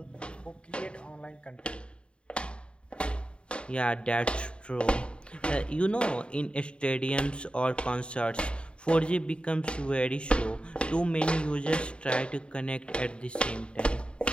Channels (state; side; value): late; right; 0.055 ms